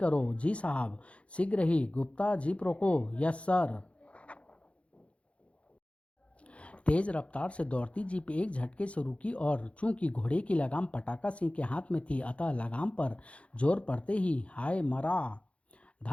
जी साहब, शीघ्र ही। गुप्ता, जीप रोको। Yes sir. तेज रफ्तार से दौड़ती जीप एक झटके से रुकी और चूंकि घोड़े की लगाम पटाका सिंह के हाथ में थी अतः लगाम पर जोर पड़ते ही हाय मरा,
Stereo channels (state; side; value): late; right; 0.062 ms